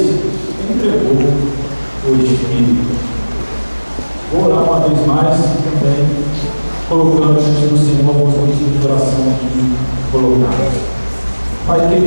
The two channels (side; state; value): both; inverted; correlation -1.00